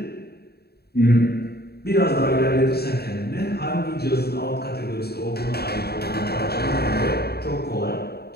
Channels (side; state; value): right; late; 0.46 ms